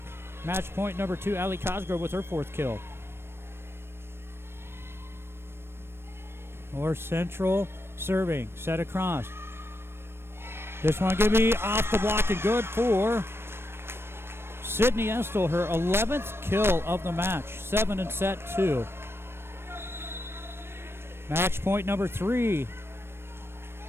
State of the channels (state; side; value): late; left; 0.12 ms